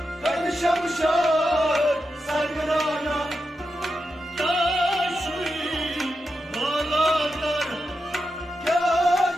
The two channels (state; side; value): normal; both; correlation 0.88